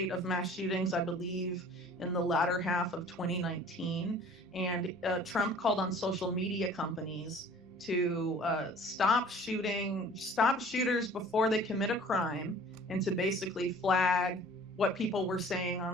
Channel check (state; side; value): normal; both; correlation 0.49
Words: of mass shootings, I believe, in the latter half of 2019. And Trump called on social media companies to stop shooters before they commit a crime, and to basically flag what people were saying